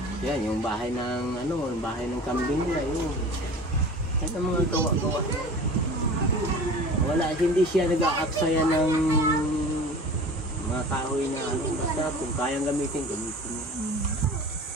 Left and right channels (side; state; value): both; normal; correlation 0.39